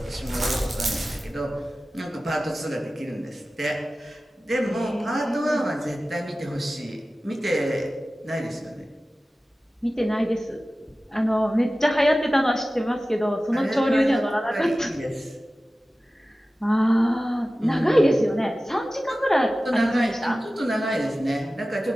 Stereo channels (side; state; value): both; normal; correlation 0.96